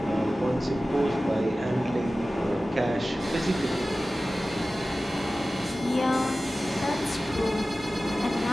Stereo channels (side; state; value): both; normal; correlation 0.96